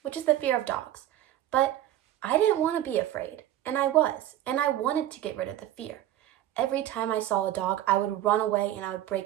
is the fear of dogs, but I didn't want to be afraid, and I wanted to get rid of the fear. Every time I saw a dog, I would run away and I would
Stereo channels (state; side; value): quieter; left; 12.9 dB